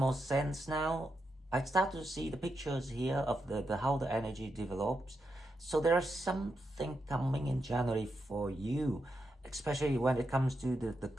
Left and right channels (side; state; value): both; normal; correlation 0.85